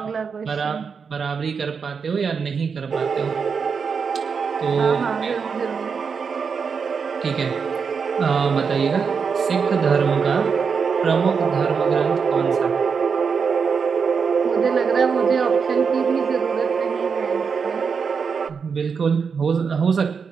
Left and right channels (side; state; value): left; quieter; 5.9 dB